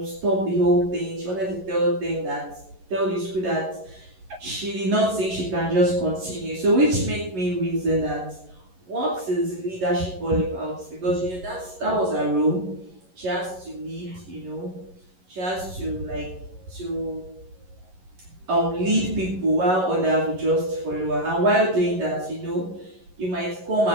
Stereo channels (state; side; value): late; left; 11 ms